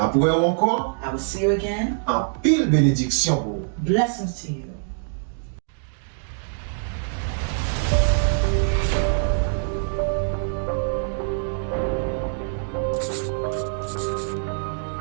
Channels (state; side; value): silent; left; digital silence